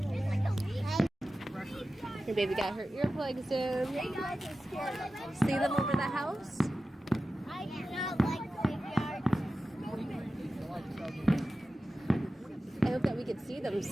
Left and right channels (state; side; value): normal; both; correlation 0.94